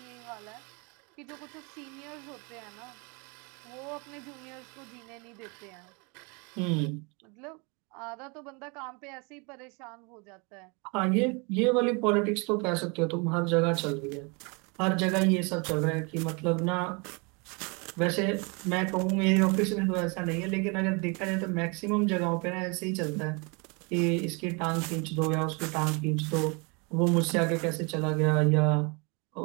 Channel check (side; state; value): left; quieter; 31.2 dB